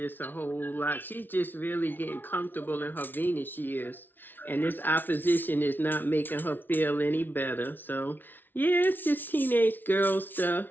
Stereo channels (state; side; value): late; right; 0.091 ms